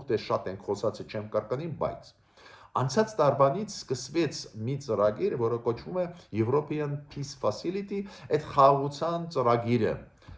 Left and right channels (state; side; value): identical; both; correlation 1.00